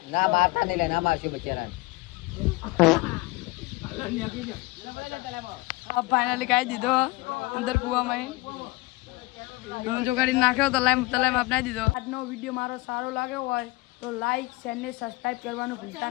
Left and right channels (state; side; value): quieter; right; 21.5 dB